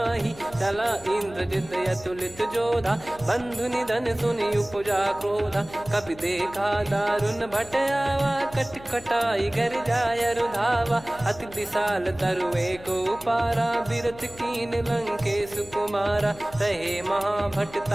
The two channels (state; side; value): noise; left; hum, 19 dB below the sound